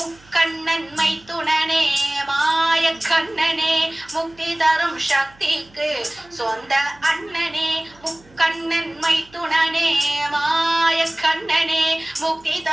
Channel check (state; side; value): noise; right; hum, 27 dB below the sound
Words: மைத்துணனே மாய கண்ணனே, முக்தி தரும் சக்திக்கு சொந்த அண்ணனே. முக்கண்ணன் மைத்துணனே மாய கண்ணனே, முக்தி